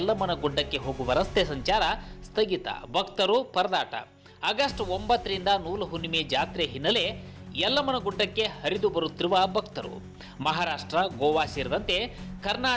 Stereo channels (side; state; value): both; identical; correlation 1.00